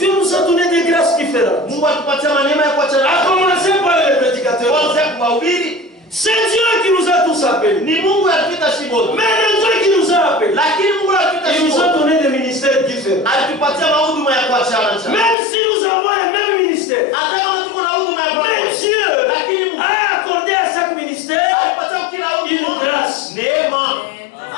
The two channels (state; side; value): drops out; right; at 15.4 s